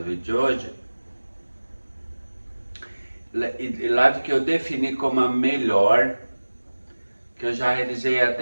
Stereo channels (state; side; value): inverted; both; correlation -1.00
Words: vídeo de hoje. Live que eu defini como a melhor que eu já realizei